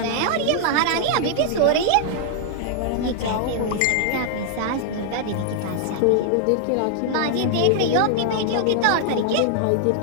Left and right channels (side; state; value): both; different; correlation -0.01